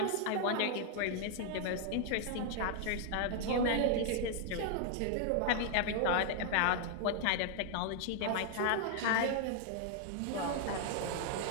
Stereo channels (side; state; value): both; different; correlation 0.00